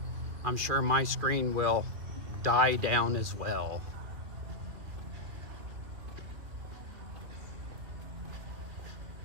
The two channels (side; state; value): left; late; 2.4 ms